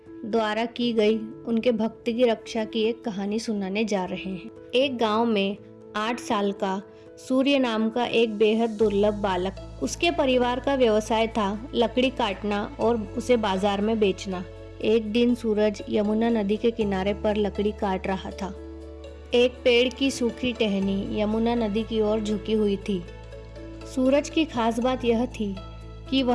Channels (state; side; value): identical; both; correlation 1.00